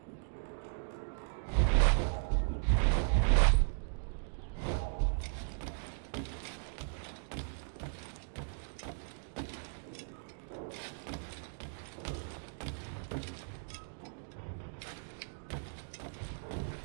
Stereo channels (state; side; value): silent; left; digital silence